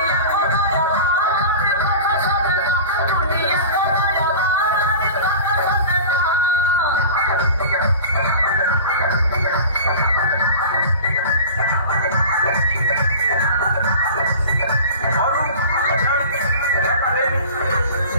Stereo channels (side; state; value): both; inverted; correlation -0.36